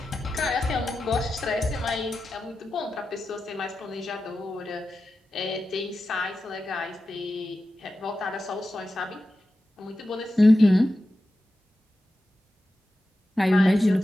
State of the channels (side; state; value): both; normal; correlation 0.92